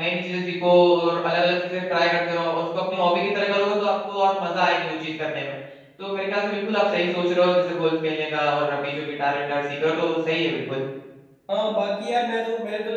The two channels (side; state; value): both; identical; correlation 1.00